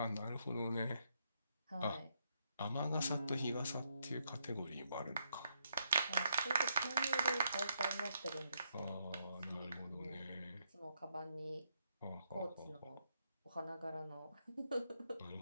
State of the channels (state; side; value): inverted; both; correlation -0.77